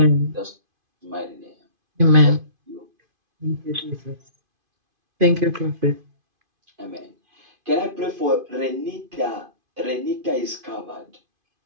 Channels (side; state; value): left; late; 2.5 ms